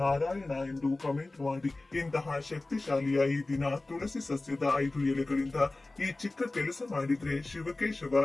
ನಾರಾಯಣ ಎಂದು ಕಮೆಂಟ್ ಮಾಡಿ. ಇಂತಹ ಶಕ್ತಿಶಾಲಿಯ ಈ ದಿನ ತುಳಸಿ ಸಸ್ಯದ 5 ಎಲೆಗಳಿಂದ ಈ ಚಿಕ್ಕ ಕೆಲಸ ಮಾಡಿದ್ರೆ ಶಿವಕೇಶವ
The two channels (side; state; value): right; quieter; 3.0 dB